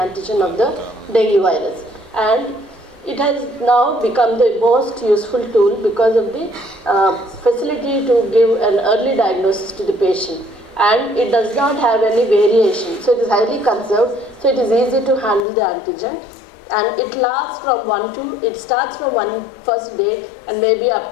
of the dengue virus. And it has now become the most useful tool because of the facility to give an early diagnosis to the patient. And it does not have any variation. So it is highly conserved, so it is easy to handle the antigen. And it lasts from it starts from one first day and maybe up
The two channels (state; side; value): drops out; right; at 15.5 s